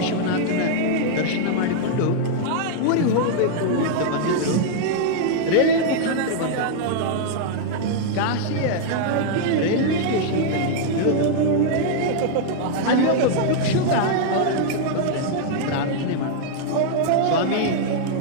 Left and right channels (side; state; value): both; different; correlation -0.01